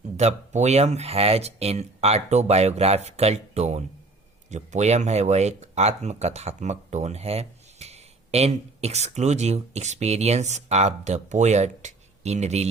the poem has an autobiographical tone. जो पोयम है वह एक आत्मकथात्मक टोन है। An exclusive experience of the poet in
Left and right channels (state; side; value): quieter; left; 3.2 dB